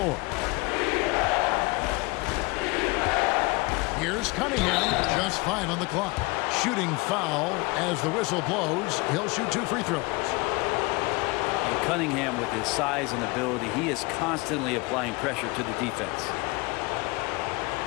Here's Cunningham, just 5 on the clock. Shooting foul as the whistle blows. He'll shoot 2 free throws. And Cunningham, with his size and ability, he is constantly applying pressure to the defense.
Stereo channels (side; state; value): right; quieter; 25.1 dB